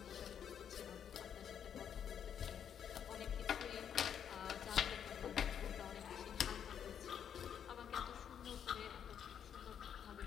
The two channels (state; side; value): quieter; right; 8.5 dB